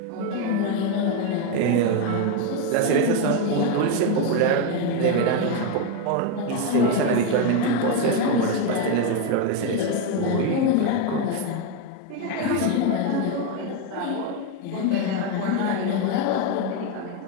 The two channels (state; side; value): different; both; correlation 0.02